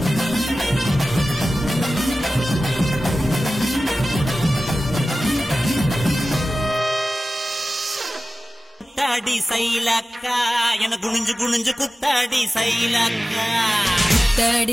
குத்தாடி சைலக்கா என குனிஞ்சு குனிஞ்சு குத்தாடி சைலக்கா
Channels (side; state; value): both; normal; correlation 0.96